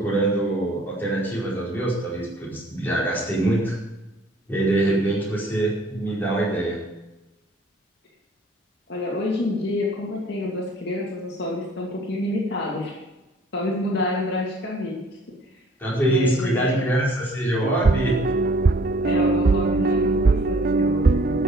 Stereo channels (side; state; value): both; normal; correlation 0.56